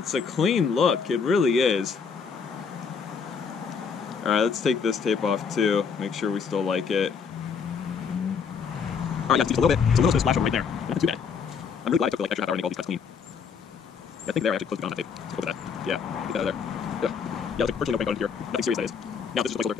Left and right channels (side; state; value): right; quieter; 6.1 dB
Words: clean look. It really is. All right, let's take this tape off too. Make sure we still like it. All right, yeah, just a little bit of splash over right there. Not too bad. I'm really glad I took like extra half hour to make all these cuts clean. I think there I actually closed it on that tape. Let's go with that. Yeah, get that out of there. Yeah, looks like virtually no paint on here. Nothing serious that is. Now this is just a placeholder,